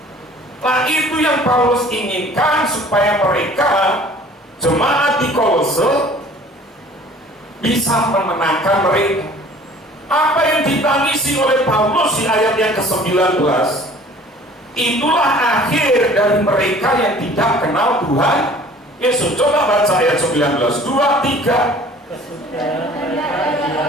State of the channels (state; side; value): normal; both; correlation 0.49